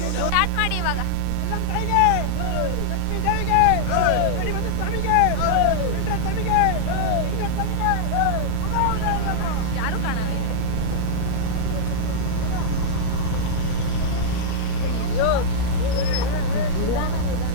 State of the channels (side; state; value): both; different; correlation -0.02